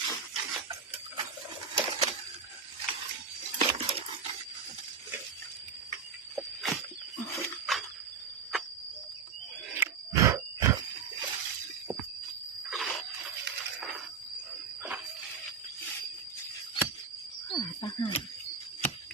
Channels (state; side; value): quieter; left; 6.0 dB